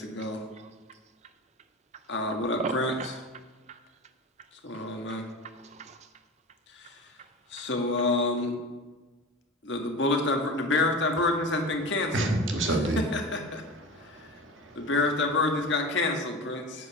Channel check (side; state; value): both; normal; correlation 0.31